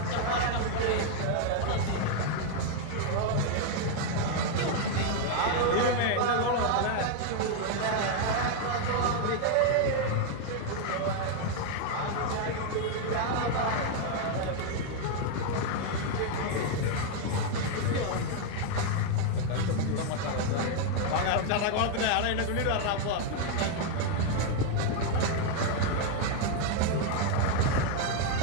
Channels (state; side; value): different; both; correlation 0.00